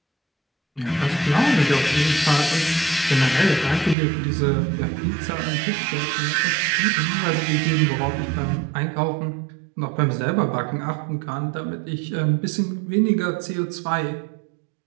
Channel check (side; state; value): left; drops out; at 4.0 s